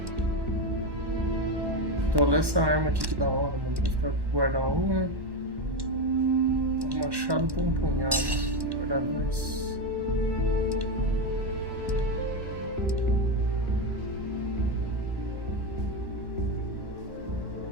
Então, olha essa arma aqui que da hora, mano. Vou ficar guardar uma. Um machado por um punhado. Guardar dois.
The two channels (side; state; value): left; late; 1.1 ms